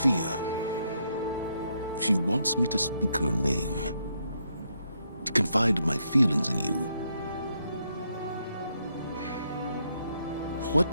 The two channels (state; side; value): inverted; both; correlation -0.77